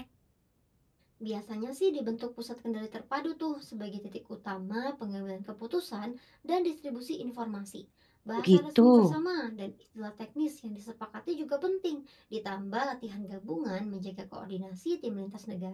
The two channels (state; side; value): identical; both; correlation 1.00